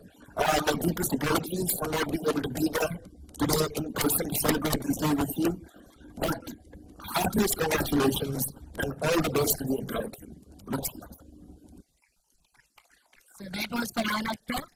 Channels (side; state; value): both; identical; correlation 1.00